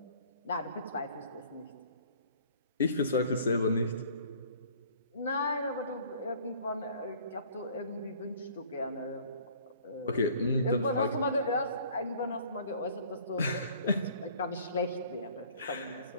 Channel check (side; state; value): both; inverted; correlation -0.53